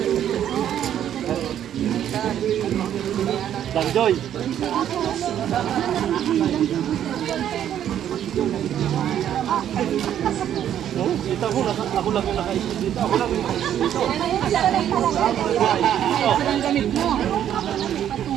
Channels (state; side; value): quieter; left; 10.4 dB